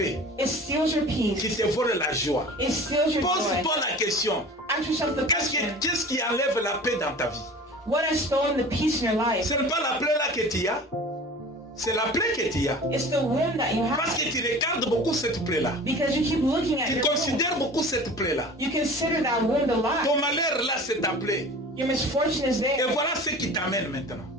It steals your qui peace. te vole la joie. It steals your joy. Pose-toi la question, Ask yourself the question, qu'est-ce qui enlève la paix dans ta vie? what has stolen the peace in your life? Ce n'est pas la plaie là que tu as, c'est la plaie que tu as. It's the wound that you Parce have. que tu regardes beaucoup cette plaie là. Because you keep looking at Tu your wound. considères beaucoup cette plaie là. You consider that wound a lot. Ton malheur là, c'est ta plaie. Your misfortune is Et there. voilà ce qui t'amène maintenant.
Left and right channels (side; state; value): both; normal; correlation 0.40